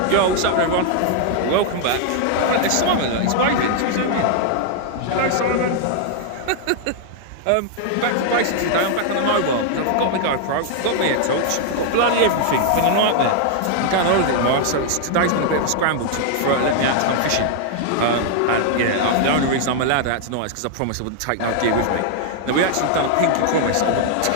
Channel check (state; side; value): different; both; correlation 0.00